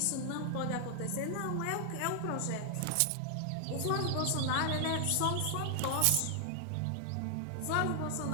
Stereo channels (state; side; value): different; both; correlation 0.00